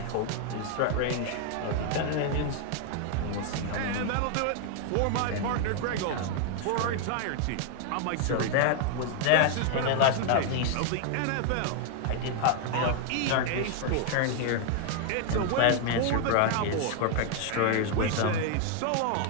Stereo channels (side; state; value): both; different; correlation 0.00